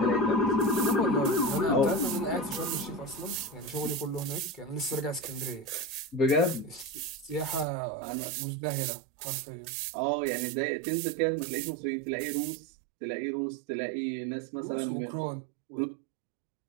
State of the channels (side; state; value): left; drops out; at 7.7 s